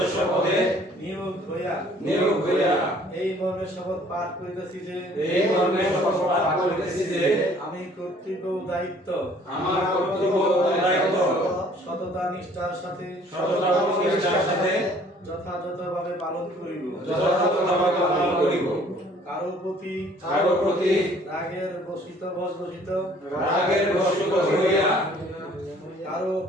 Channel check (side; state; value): both; normal; correlation 0.56